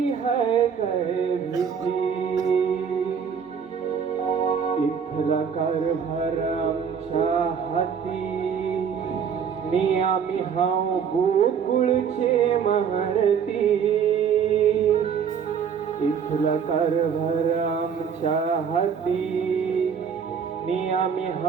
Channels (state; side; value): quieter; left; 7.0 dB